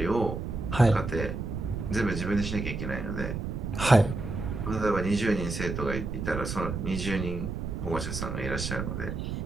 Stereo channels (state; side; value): noise; right; rumble, 4 dB below the sound